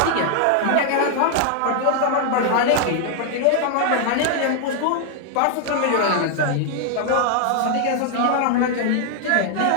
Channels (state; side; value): different; both; correlation 0.00